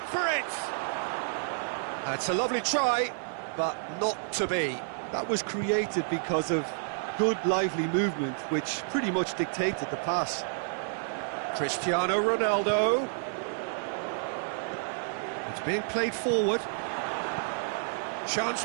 for it! That's a lovely try, but not to be. That was created because of good, lively movement, which pretty much dictated the pass. Cristiano Ronaldo. It's being played forward. Chance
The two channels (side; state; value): left; silent; 58 dB below the other